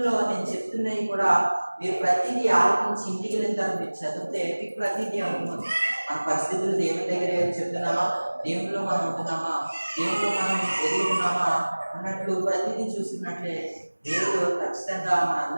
నేను చెప్తున్నవి కూడా మీరు ప్రతిదీ ఆలోచించి ఇంటికి వెళ్ళిన తర్వాత మీరు చదివితే మీకు ప్రతిదీ అనుకున్నాను. మన పరిస్థితులు దేవుని దగ్గర చెప్తున్నామా, దేవునిలో మనం ఉంటున్నామా, దేవునిలో మనం ఎదుగుతున్నామా అన్నట్లు ప్రతిదీ చూస్తున్నట్లే దేవుడు ఖచ్చితంగా మన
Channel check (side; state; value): both; inverted; correlation -1.00